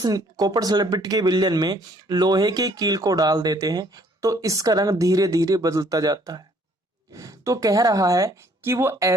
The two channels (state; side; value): normal; both; correlation 0.62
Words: कॉपर सल्फेट के विलयन में लोहे की कील को डाल देते हैं तो इसका रंग धीरे धीरे बदलता जाता है। तो कह रहा है कि वो